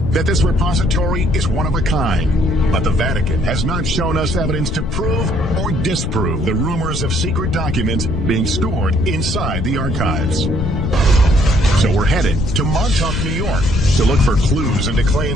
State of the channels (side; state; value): left; noise; rumble, 3 dB below the sound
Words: that this repository is one of a kind. But the Vatican has not shown us evidence to prove or disprove the rumors of secret documents being stored inside the archives. So we're headed to Montauk, New York, to look for clues into